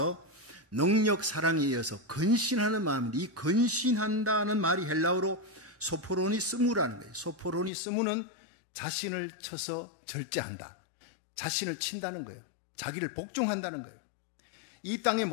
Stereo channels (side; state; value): right; drops out; at 7.7 s